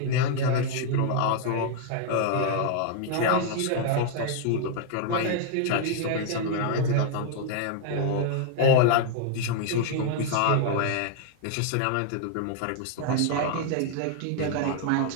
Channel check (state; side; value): different; both; correlation 0.00